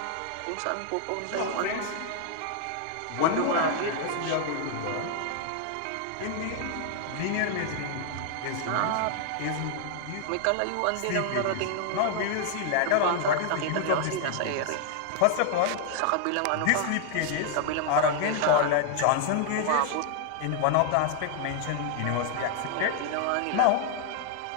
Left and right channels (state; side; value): different; both; correlation 0.00